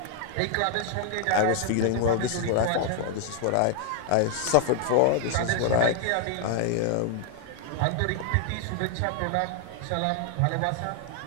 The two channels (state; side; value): different; both; correlation 0.00